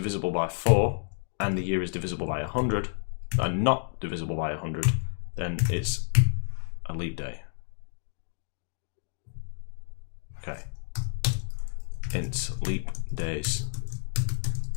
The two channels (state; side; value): silent; right; digital silence